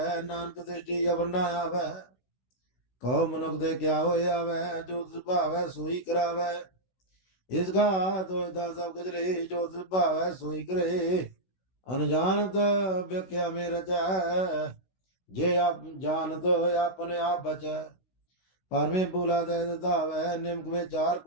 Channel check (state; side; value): late; right; 16 ms